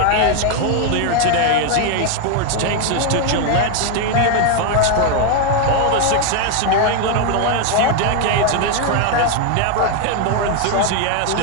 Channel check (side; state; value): both; different; correlation 0.01